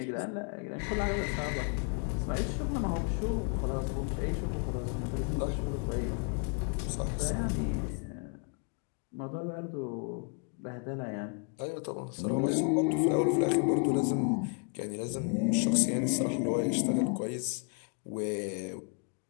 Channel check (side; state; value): right; quieter; 39.5 dB